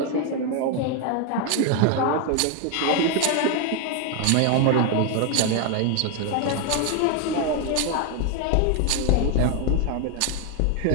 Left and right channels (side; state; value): both; different; correlation 0.01